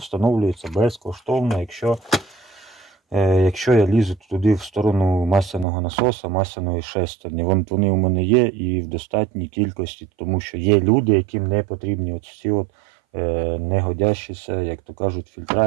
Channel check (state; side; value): drops out; left; at 5.7 s